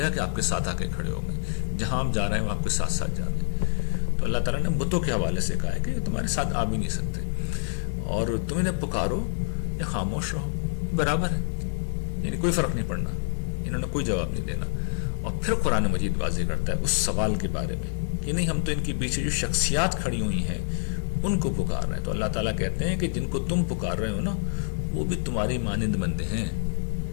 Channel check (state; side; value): silent; right; digital silence